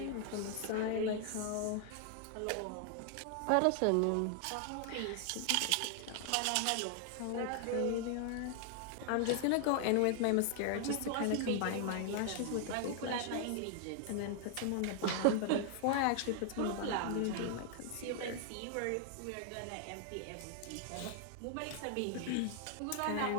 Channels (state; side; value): different; both; correlation 0.00